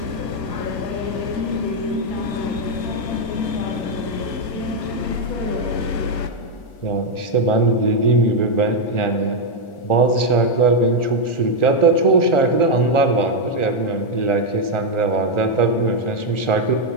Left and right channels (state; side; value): late; right; 1.4 ms